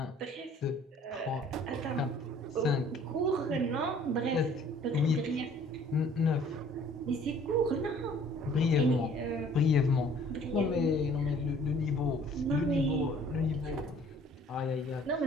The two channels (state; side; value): normal; both; correlation 0.55